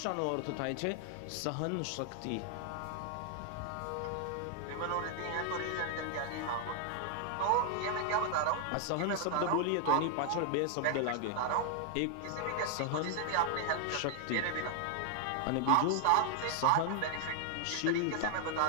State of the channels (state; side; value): different; both; correlation 0.00